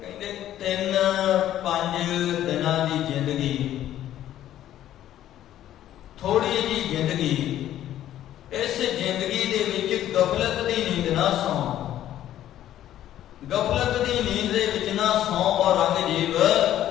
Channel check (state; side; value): quieter; right; 12.3 dB